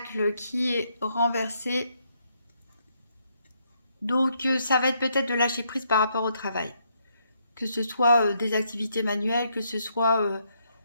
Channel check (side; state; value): both; inverted; correlation -0.75